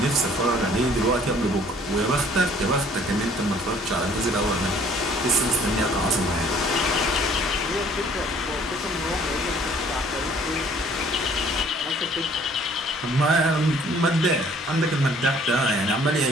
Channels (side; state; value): both; normal; correlation 0.57